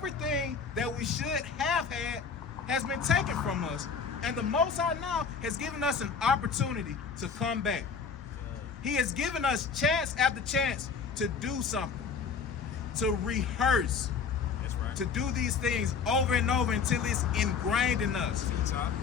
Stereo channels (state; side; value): quieter; right; 5.7 dB